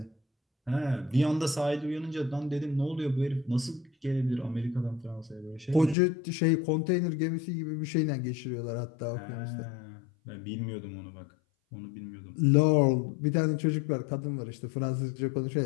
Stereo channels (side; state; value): right; drops out; at 6.0 s